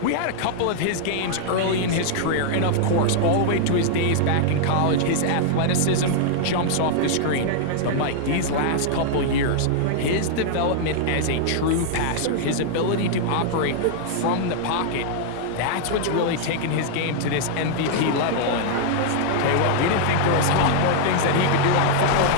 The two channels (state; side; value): different; both; correlation -0.01